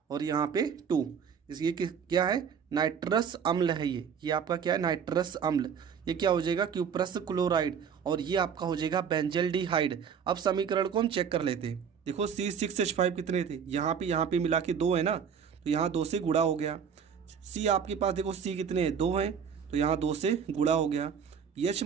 और यहाँ पे 2। ये क्या है? नाइट्रस अम्ल है। ये आपका क्या है? नाइट्रस अम्ल। ये क्या हो जाएगा? Cuprous chloride. और ये आपका हो जाएगा बेंजल्डिहाइड। अब समीकरण को हम चेक कर लेते हैं। देखो C6H5 कितने थे? यहाँ पे मिला के 2 है ना, तो यहाँ 2 से गुणा हो गया। C आपके पास देखो C कितने हैं? 2 हैं, तो यहाँ 2 से गुणा हो गया। H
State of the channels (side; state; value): left; quieter; 7.2 dB